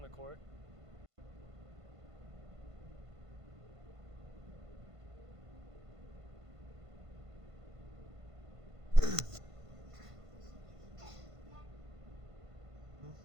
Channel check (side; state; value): left; late; 1.5 ms